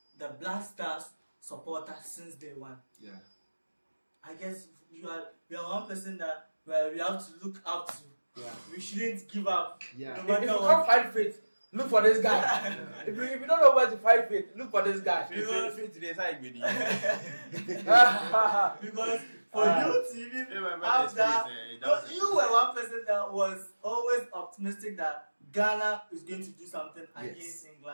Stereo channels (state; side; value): inverted; both; correlation -1.00